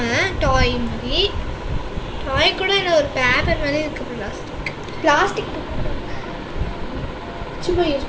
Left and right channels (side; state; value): both; identical; correlation 1.00